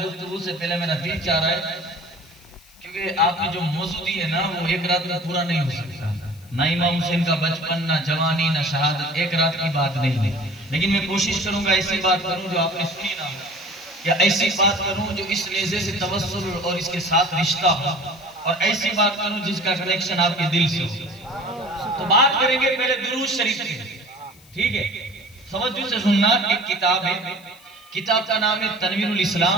سے پہلے میرا دل چاہ رہا ہے، کیونکہ آپ نے جو موضوع دی ہے نا، وہ ایک رات میں پورا نہیں ہو سکتا. نہ امام حسین کا بچپن، نہ جوانی، نہ شہادت، ایک رات کی بات نہیں ہے. لیکن میں کوشش کروں گا ایسی بات کروں جو آپ نے سنی نہ ہو، یا ایسی بات کروں جو اس نیزے سے توسل اور اس کے ساتھ رشتہ ہو، اور ایسی بات کروں جس کا کنیکشن آپ کے دل سے ہو. تو بات کریں گے پہلے درود شریف سے. ٹھیک ہے، توجہ سے سننا. ایک کتاب ہے، کتاب کا نام ہے تنویر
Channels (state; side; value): noise; left; hiss, 26 dB below the sound